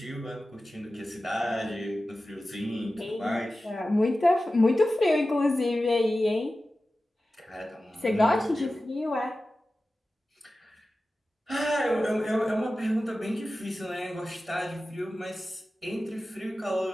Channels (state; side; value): normal; both; correlation 0.95